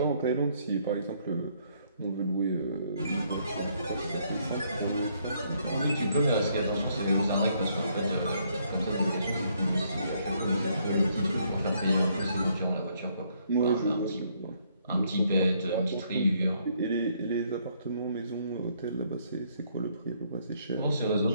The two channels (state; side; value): inverted; both; correlation -0.69